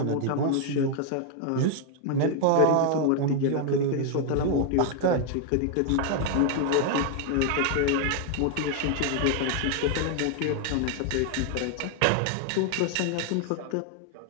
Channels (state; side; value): different; both; correlation 0.00